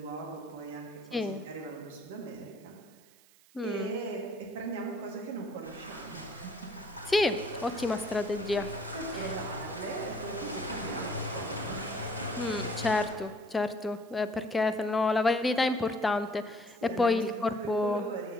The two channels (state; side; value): noise; right; hiss, 27 dB below the sound